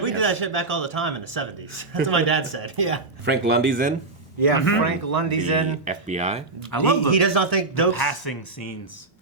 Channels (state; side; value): quieter; left; 3.4 dB